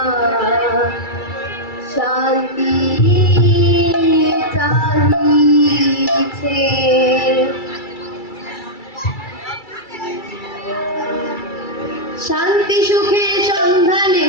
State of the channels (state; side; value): late; right; 2.3 ms